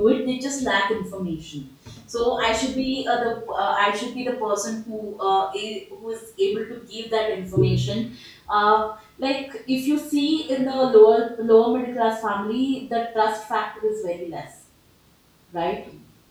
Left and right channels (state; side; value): identical; both; correlation 1.00